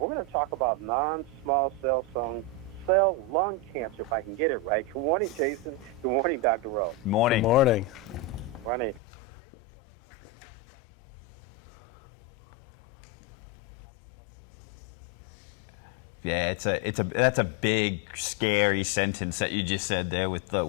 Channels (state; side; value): drops out; right; at 9.0 s